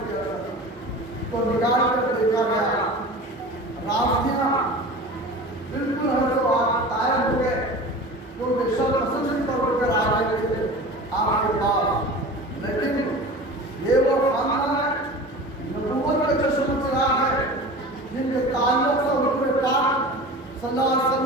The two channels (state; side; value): normal; both; correlation 0.36